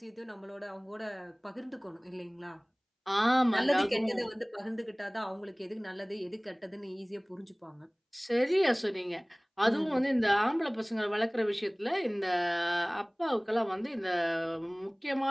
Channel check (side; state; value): both; identical; correlation 1.00